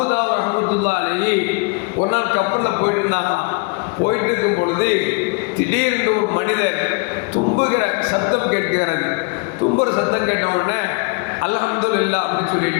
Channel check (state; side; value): quieter; right; 31.7 dB